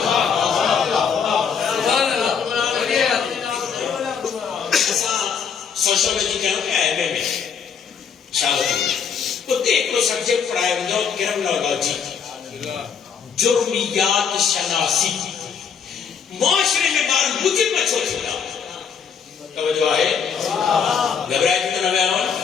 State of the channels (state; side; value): quieter; right; 6.8 dB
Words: سوشولوجی کہنا کہ ایم اے میں شاگرد وہ ایک لو سبجیکٹ پڑھائے ہوئے کرمنالوجی جرمیات شناسی معاشرے میں بار مجرم چھوڑ چھوڑا توجہ ہے گھبرائے کتنا میں آؤں